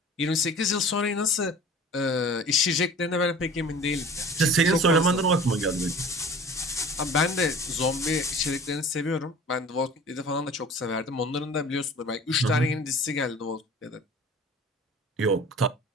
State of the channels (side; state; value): both; normal; correlation 0.43